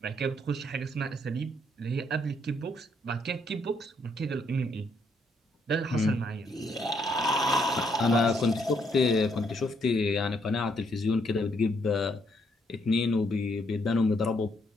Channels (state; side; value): normal; both; correlation 0.72